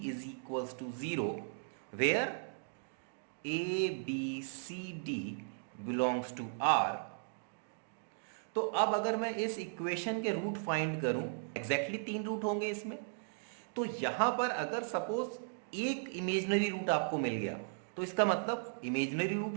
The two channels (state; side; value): silent; left; digital silence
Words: is equals to 0, where a b c d belongs to R. तो अब अगर मैं इस इक्वेशन के रूट फाइंड करूं, एग्जैक्टली 3 रूट होंगे इसमें, तो यहां पर अगर सपोज एक इमेजिनरी रूट आपको मिल गया, तो इसका मतलब इमेजिनरी रूट